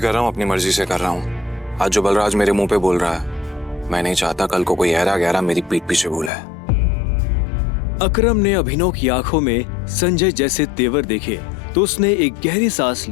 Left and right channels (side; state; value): right; drops out; at 6.3 s